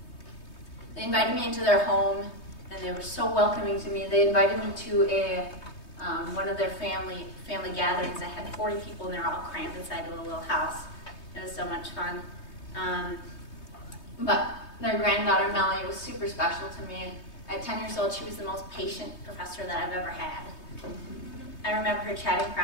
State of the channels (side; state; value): right; late; 3.2 ms